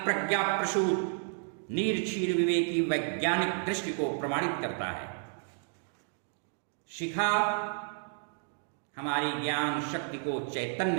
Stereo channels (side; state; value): left; silent; 57 dB below the other